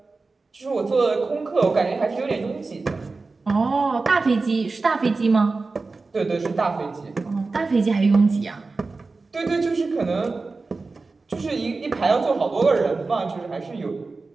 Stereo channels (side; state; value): left; quieter; 3.8 dB